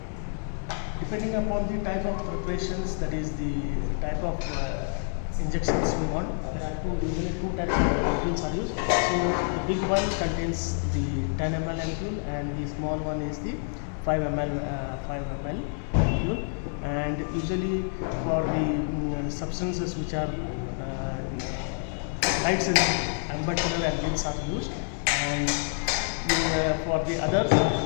Depending upon the type of preparations, that is the type of injections we want, there are usually two types of ampules are used. So the big one contains the 10 ml ampule, and the small one is the 5 ml ampule. And usually for the substances which are light sensitive, amber color ampules are used, and for the others,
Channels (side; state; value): right; silent; 59 dB below the other